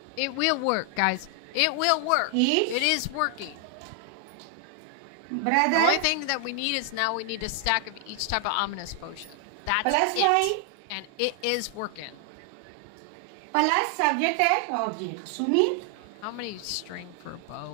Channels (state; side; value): different; both; correlation 0.00